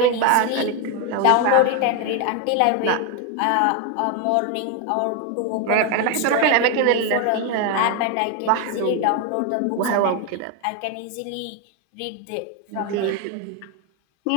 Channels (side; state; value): both; different; correlation 0.01